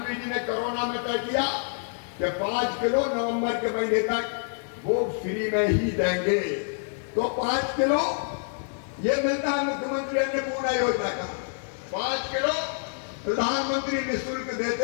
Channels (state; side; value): silent; right; digital silence